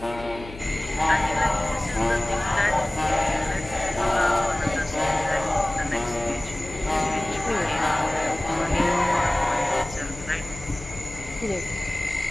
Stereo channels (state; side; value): noise; left; hum, 15 dB below the sound